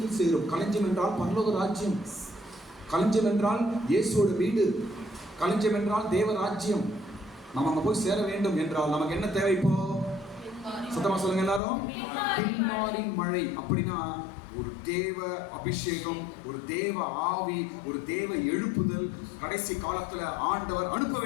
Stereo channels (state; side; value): drops out; right; at 11.6 s